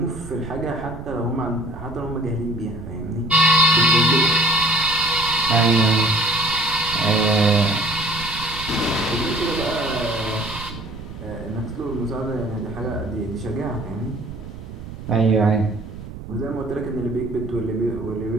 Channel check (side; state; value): right; noise; rumble, 12 dB below the sound